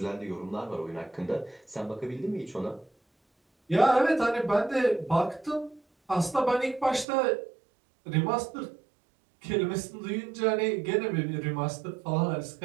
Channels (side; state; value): left; drops out; at 7.1 s